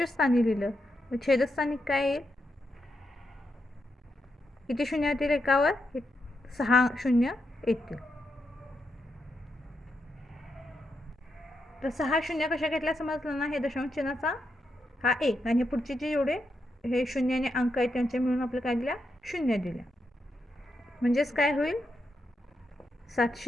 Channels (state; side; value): normal; both; correlation 0.84